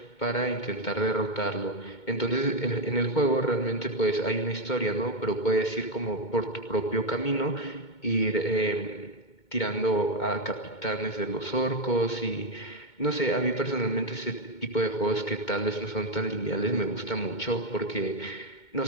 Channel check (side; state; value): right; late; 2.2 ms